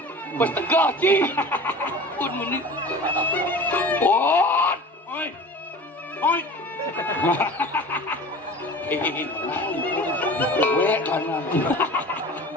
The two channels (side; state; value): both; normal; correlation 0.39